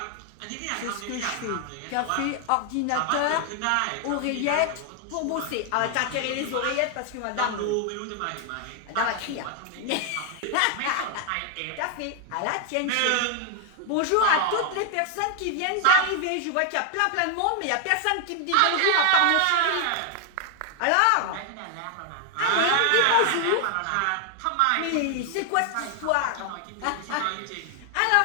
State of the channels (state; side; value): different; both; correlation 0.00